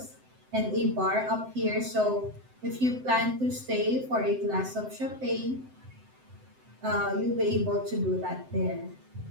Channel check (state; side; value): late; left; 7.8 ms